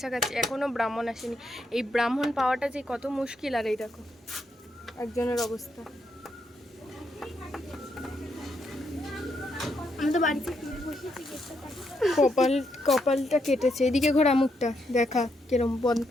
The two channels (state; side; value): normal; both; correlation 0.79